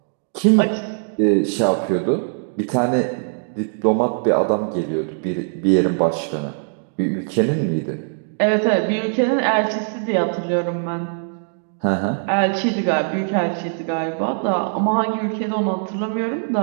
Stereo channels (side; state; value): left; silent; digital silence